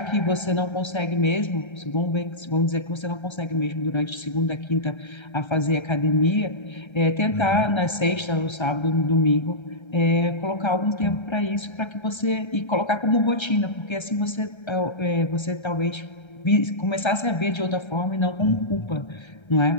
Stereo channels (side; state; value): right; late; 1.3 ms